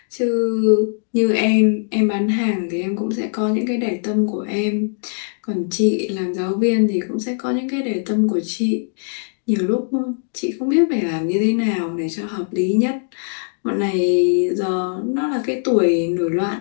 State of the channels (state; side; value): silent; right; digital silence